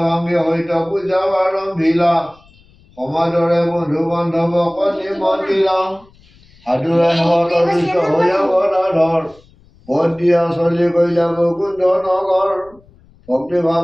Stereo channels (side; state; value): left; noise; rumble, 29 dB below the sound